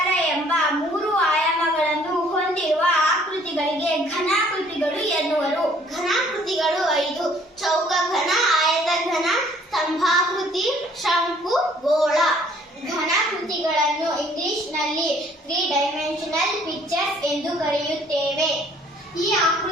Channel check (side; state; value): both; normal; correlation 0.59